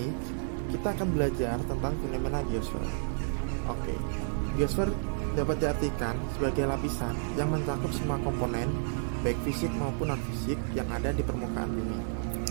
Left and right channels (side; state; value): left; silent; digital silence